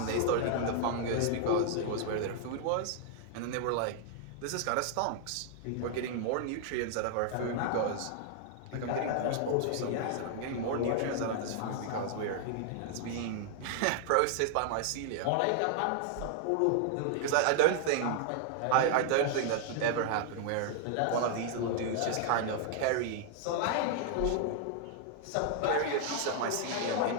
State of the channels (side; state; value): both; different; correlation -0.01